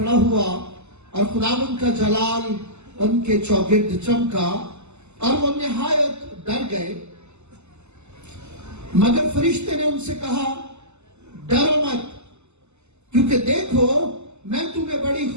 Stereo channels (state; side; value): late; left; 0.82 ms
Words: ہوا اور خداوند کا جلال ان کے چوگرد چمکا اور وہ نہایت ڈر گئے۔ مگر فرشتے نے ان سے کہا، ڈرو مت، کیونکہ دیکھو میں تمہیں بڑی